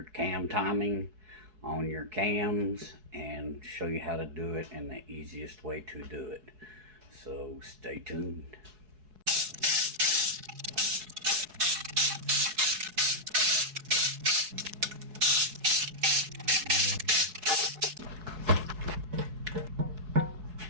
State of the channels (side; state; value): left; late; 4.7 ms